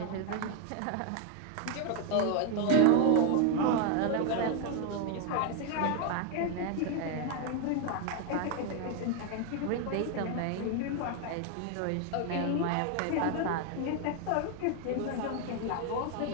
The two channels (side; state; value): both; different; correlation 0.01